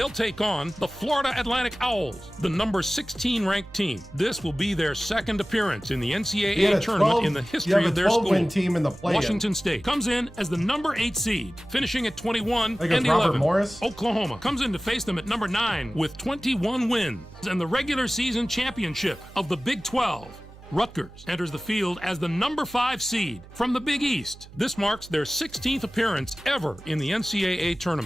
take on the Florida Atlantic Owls, the number 16 ranked team. This will be their second appearance in the NCAA tournament in the history of their school. Team in the Washington State comes in as the number 8 seed, finishing at 21-11. Oklahoma comes in to face them at number 9 with 21 wins and the regular season championship of the Big 12. Rutgers enters the field as the number 5 seed from the Big East. This marks their 16th appearance ever in the NCAA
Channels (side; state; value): right; noise; hum, 19 dB below the sound